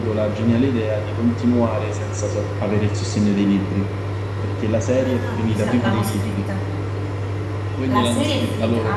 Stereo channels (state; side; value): identical; both; correlation 1.00